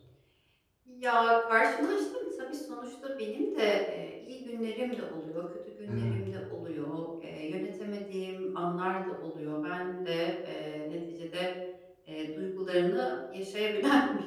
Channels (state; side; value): identical; both; correlation 1.00